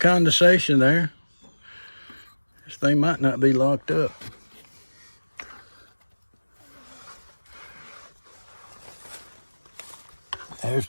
there. This thing might not be locked up. There's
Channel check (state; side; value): inverted; both; correlation -1.00